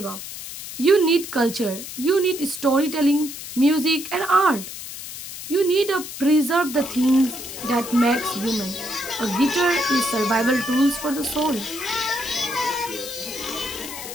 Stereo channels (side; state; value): left; noise; hiss, 10 dB below the sound